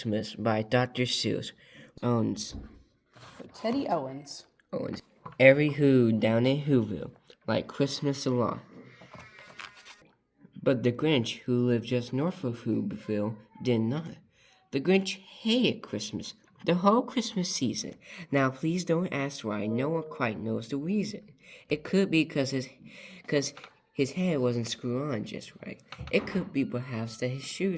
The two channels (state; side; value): identical; both; correlation 1.00